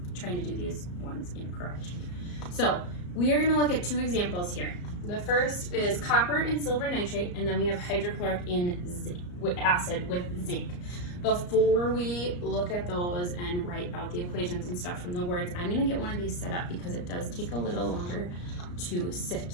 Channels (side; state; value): right; late; 34 ms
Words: trying to do these ones incorrect. So we are going to look at two examples here. The first is copper and silver nitrate, and then we have hydrochloric acid with zinc. Before we look at those and write out the equations and stuff from the words, I'm going to get one of these set up because it does take a little longer to sit.